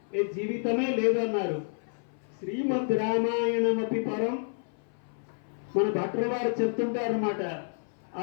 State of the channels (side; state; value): right; silent; 56 dB below the other